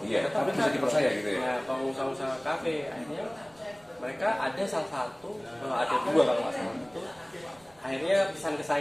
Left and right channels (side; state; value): right; noise; rumble, 29 dB below the sound